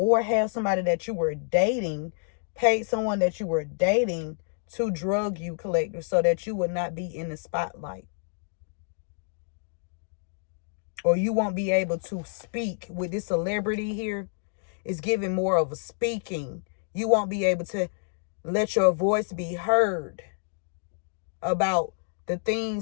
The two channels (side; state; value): right; silent; digital silence